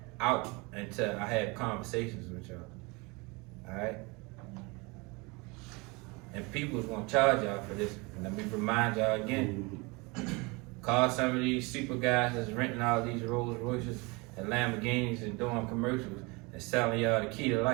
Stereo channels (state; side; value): quieter; left; 26.9 dB